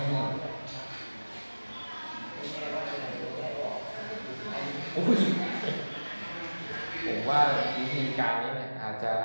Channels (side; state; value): both; inverted; correlation -1.00